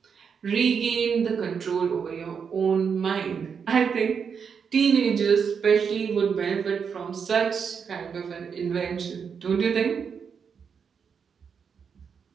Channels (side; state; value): left; quieter; 6.5 dB